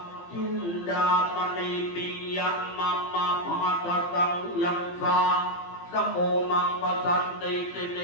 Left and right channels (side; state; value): right; late; 17 ms